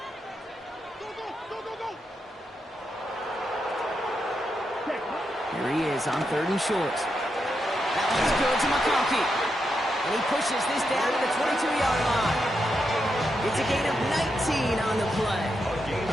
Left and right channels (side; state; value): both; normal; correlation 0.84